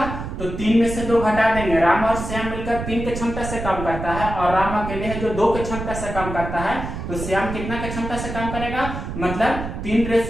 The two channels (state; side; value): noise; right; rumble, 7 dB below the sound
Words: तो 3 में से 2 घटा देंगे। राम और श्याम मिलकर 3 के क्षमता से काम करता है और राम अकेले है जो 2 के क्षमता से काम करता है तो श्याम कितना के क्षमता से काम करेगा मतलब 3